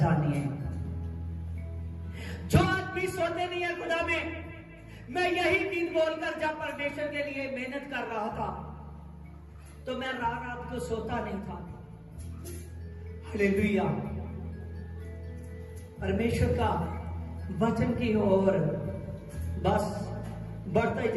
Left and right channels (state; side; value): identical; both; correlation 1.00